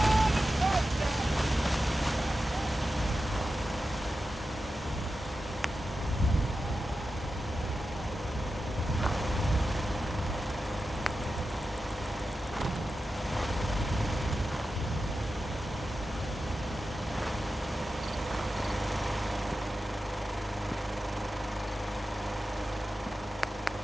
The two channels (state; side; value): normal; both; correlation 0.92